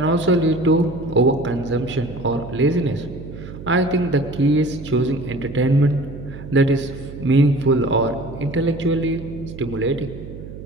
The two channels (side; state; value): right; noise; hum, 13 dB below the sound